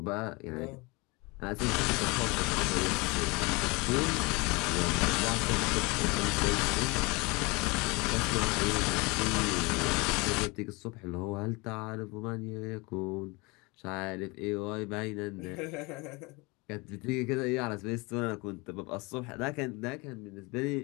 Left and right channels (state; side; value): quieter; right; 26.5 dB